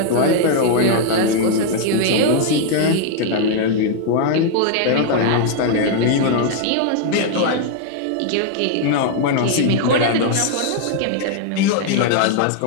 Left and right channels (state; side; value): different; both; correlation 0.00